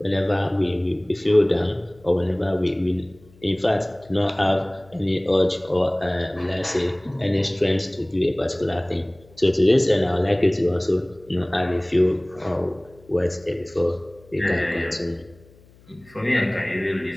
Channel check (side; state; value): left; noise; hum, 27 dB below the sound